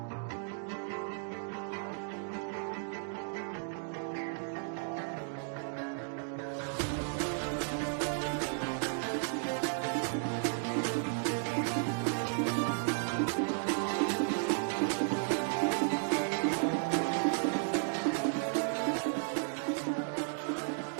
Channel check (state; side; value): silent; left; 55 dB below the other